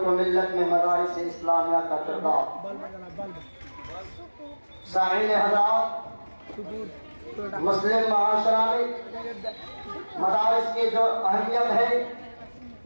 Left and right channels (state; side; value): inverted; both; correlation -1.00